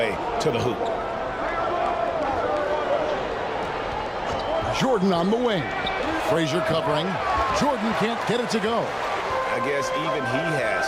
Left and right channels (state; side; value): identical; both; correlation 1.00